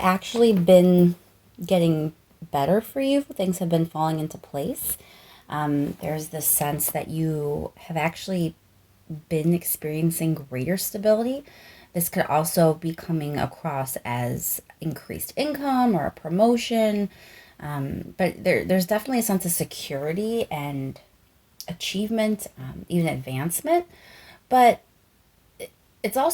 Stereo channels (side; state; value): both; identical; correlation 1.00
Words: actually been getting better for you. Things have been falling into place. There's this sense that you have actually been experiencing greater stability. This could also be coming across as increased income or a promotion. But there's definitely a sense of security and achievement, even advancement. But it's